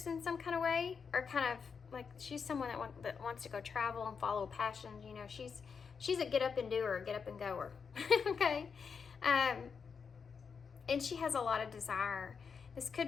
in some kind of way, or kind of like she's someone that wants to go travel and follow passions. You know, she's a get up and doer, get up and goer. Okay. And she has a lot of desire. This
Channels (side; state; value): right; quieter; 6.0 dB